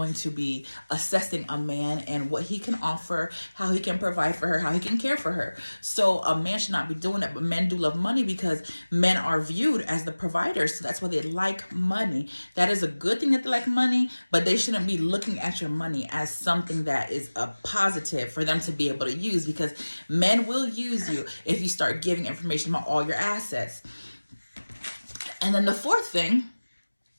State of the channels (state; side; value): inverted; both; correlation -1.00